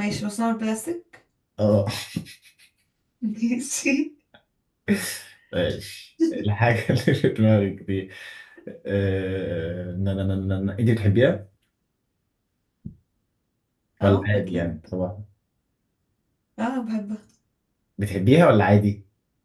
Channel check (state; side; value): identical; both; correlation 1.00